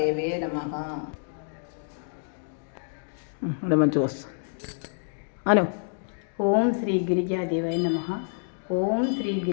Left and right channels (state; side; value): silent; right; digital silence